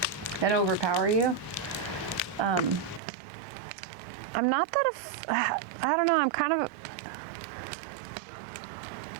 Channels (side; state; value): left; drops out; at 3.0 s